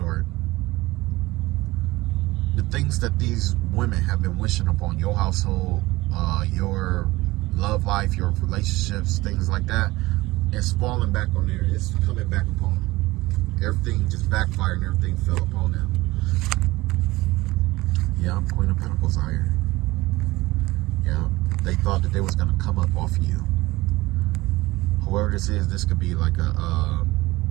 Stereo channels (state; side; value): quieter; left; 19.7 dB